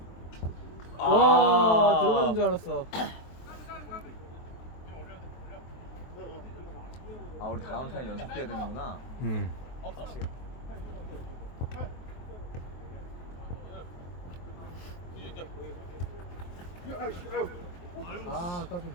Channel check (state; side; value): late; right; 23 ms